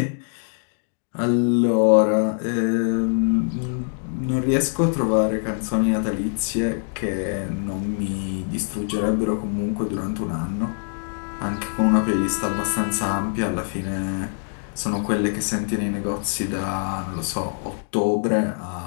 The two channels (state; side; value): silent; right; digital silence